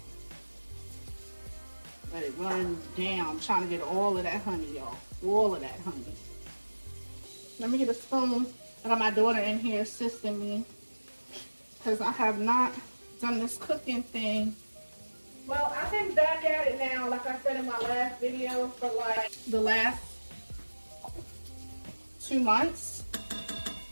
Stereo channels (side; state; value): both; inverted; correlation -1.00